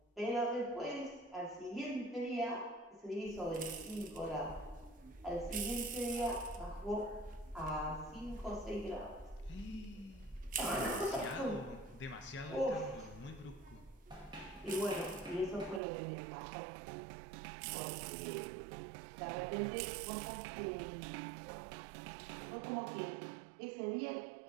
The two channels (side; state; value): left; drops out; at 15.8 s